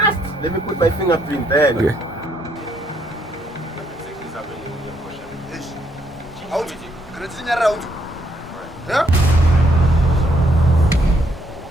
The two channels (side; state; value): both; normal; correlation 0.72